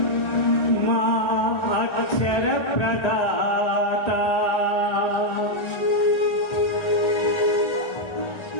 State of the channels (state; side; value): late; right; 1.3 ms